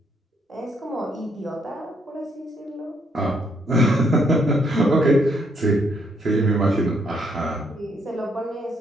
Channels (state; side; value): normal; both; correlation 0.72